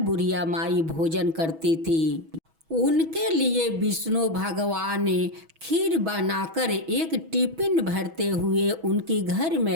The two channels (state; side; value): late; left; 6.2 ms